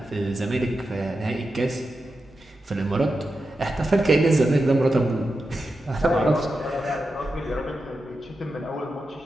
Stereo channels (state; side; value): normal; both; correlation 0.90